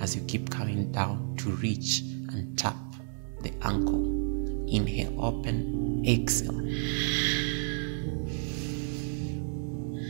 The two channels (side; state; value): left; silent; 57 dB below the other